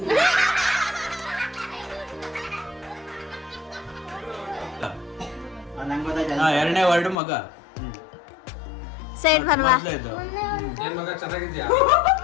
ಎರಡನೇ ವರ್ಡ್ ಮಗ. ಸೈಡ್ ಬರ್ವಾ. ಏನ್ ಮಗ ಚೆನ್ನಾಗಿದ್ಯಾ?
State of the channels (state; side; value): drops out; right; at 7.2 s